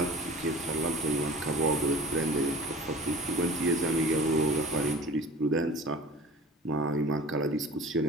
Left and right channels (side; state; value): both; normal; correlation 0.41